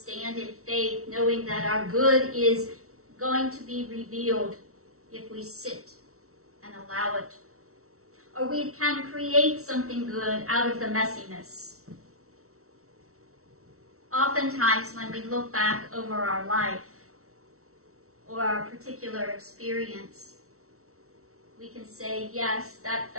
in faith, knowing that our good is going to be revealed if we sit and allow it. Or we can create something good out of the messiness. Oftentimes when we look back over our life or our particular experience, we can say, yes, that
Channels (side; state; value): left; late; 0.63 ms